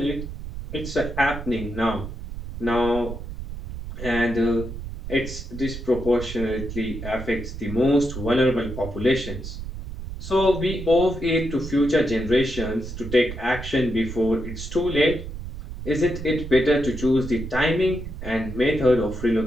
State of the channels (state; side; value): noise; right; rumble, 9 dB below the sound